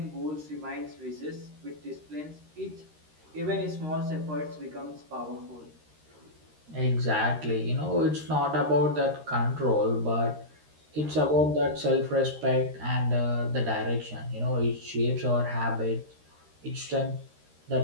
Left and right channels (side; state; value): left; late; 13 ms